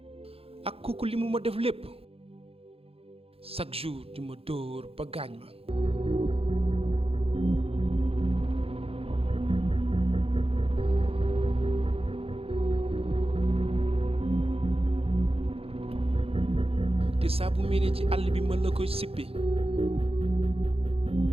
ak kooku li mu ma def lépp chaque jour di ma dóor ba gaañ ma. te saa bu mel ci àll bi mën la koy sippi.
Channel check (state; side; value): late; left; 0.28 ms